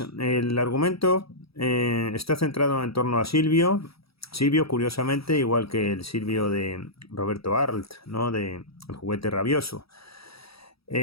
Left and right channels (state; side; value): late; right; 0.76 ms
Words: el argumento está centrado en torno a Silvio. Silvio, curiosamente, igual que el Silvio de Roberto Arlt, ¿no? De El juguete rabioso.